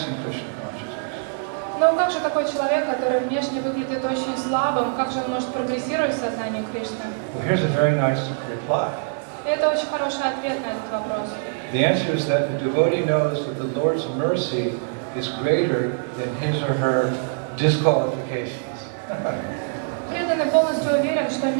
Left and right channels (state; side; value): silent; left; digital silence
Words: in Krishna consciousness? Но как же такой человек, который внешне выглядит очень слабым, как же он может прогрессировать в сознании Кришны? Well, here's a very nice reply. И это очень хороший ответ на этот вопрос. The answer is that the devotee knows that the Lord's mercy is greater than his or her disqualifications. Преданный полностью уверен, что